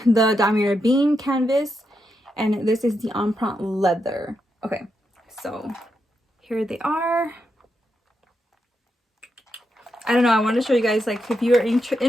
The Damier Bean canvas, and this is the empreinte leather. Okay, so here they are. I don't know, I want to show you guys, like, if you're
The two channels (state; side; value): normal; both; correlation 0.84